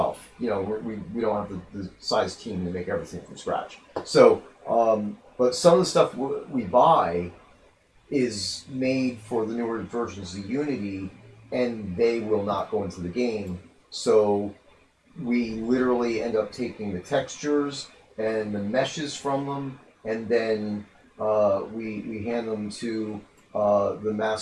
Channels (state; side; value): identical; both; correlation 1.00